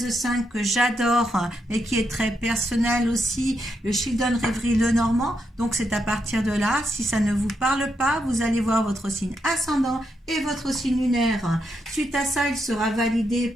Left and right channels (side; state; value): both; normal; correlation 0.81